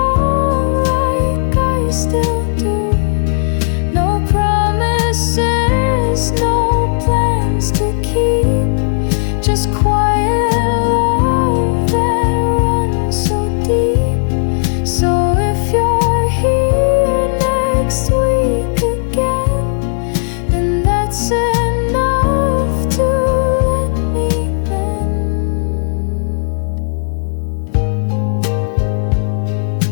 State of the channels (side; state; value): right; silent; 69 dB below the other